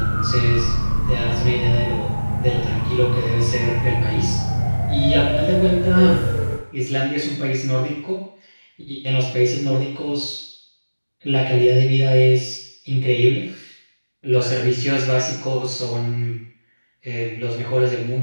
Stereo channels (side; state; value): both; inverted; correlation -1.00